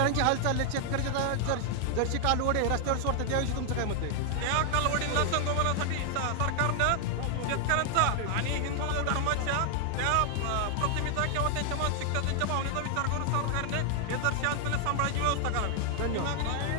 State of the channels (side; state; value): both; different; correlation 0.00